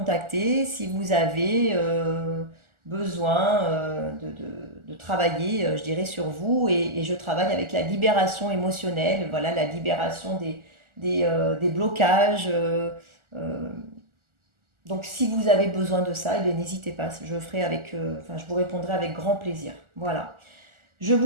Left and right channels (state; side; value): late; left; 1.4 ms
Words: si vous avez besoin de travailler, je dirais, sur vous. Et je travaille avec la libération émotionnelle, voilà, la libération des blocages. Donc si vous avez besoin de ça, eh n'hésitez pas, je vous répondrai avec grand plaisir. Voilà. Je